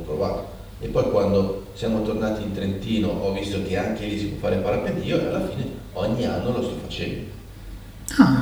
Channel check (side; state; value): both; identical; correlation 1.00